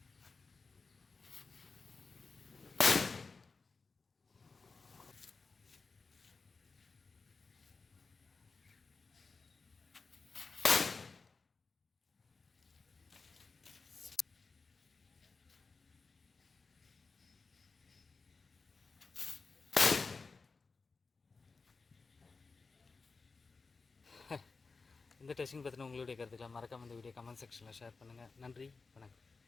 இந்த டெஸ்டிங் பற்றின உங்களுடைய கருத்துக்களை மறக்காம இந்த வீடியோ கமெண்ட் செக்ஷனில் ஷேர் பண்ணுங்கள். நன்றி, வணக்கம்.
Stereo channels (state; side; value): quieter; right; 4.3 dB